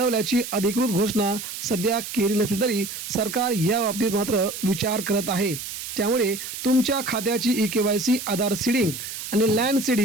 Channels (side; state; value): right; noise; hiss, 8 dB below the sound